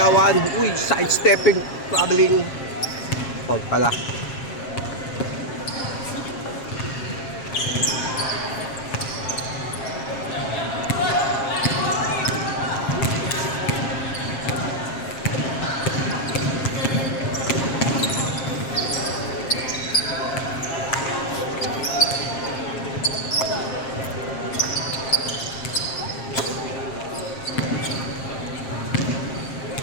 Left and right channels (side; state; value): right; late; 7.4 ms